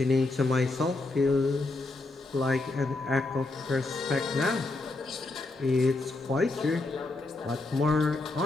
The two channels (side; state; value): right; quieter; 3.2 dB